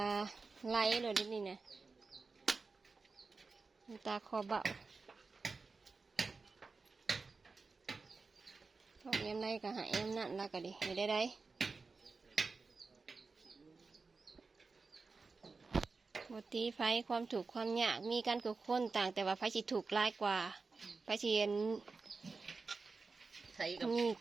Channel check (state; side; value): quieter; left; 4.2 dB